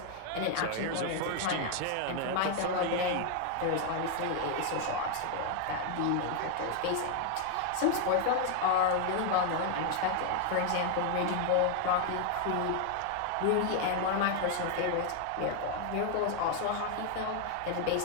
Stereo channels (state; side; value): different; both; correlation 0.00